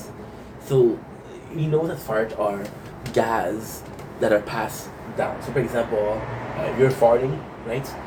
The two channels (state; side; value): identical; both; correlation 1.00